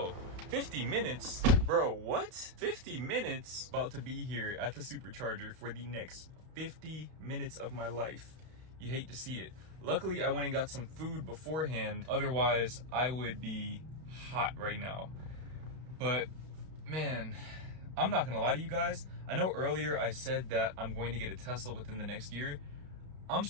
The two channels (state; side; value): late; left; 32 ms